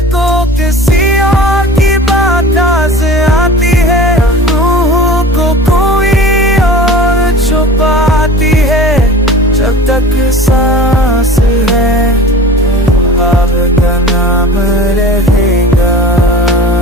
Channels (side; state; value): both; normal; correlation 0.39